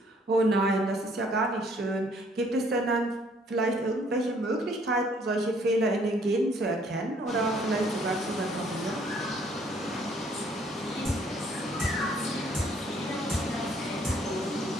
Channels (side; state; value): both; normal; correlation 0.63